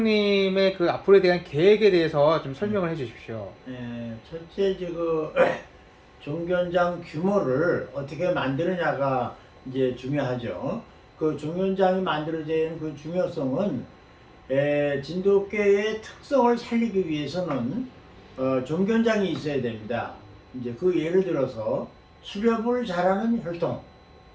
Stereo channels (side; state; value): both; identical; correlation 1.00